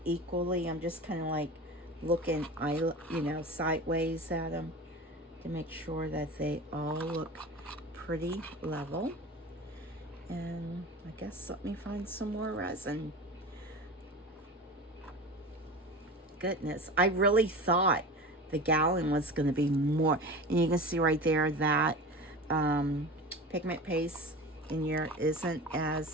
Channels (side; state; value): both; normal; correlation 0.32